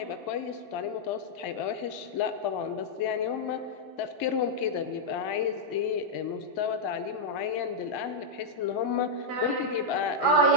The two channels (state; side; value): late; right; 2.2 ms